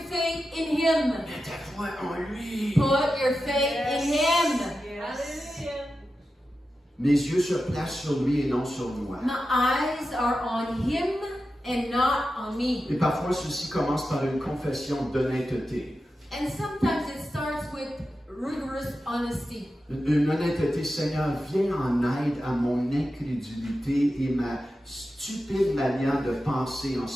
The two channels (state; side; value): normal; both; correlation 0.91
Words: faith in Him. Mets ta foi en lui. Put your faith in Him. Hallelujah. Mes yeux se placent sur lui et non sur moi. My eyes are on Him and not on me. Et parfois, ceci commence par une confession d'honnêteté. And sometimes it starts with rigorous honesty. Une honnêteté, Seigneur, viens en aide à mon incrédulité et ma stupide manière de penser en